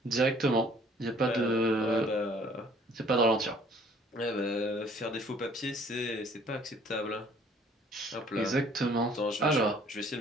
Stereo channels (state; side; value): normal; both; correlation 0.57